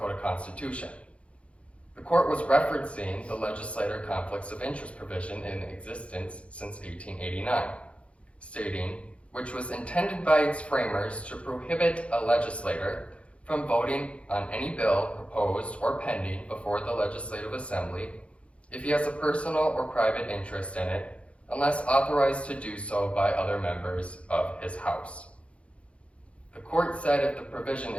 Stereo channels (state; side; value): late; right; 0.061 ms